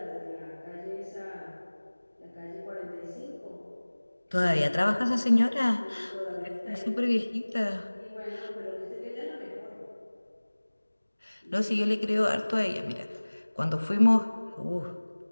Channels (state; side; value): inverted; both; correlation -1.00